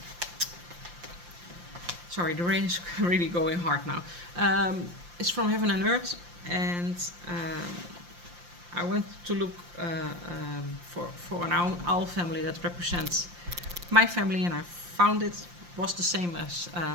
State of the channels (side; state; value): left; late; 5.7 ms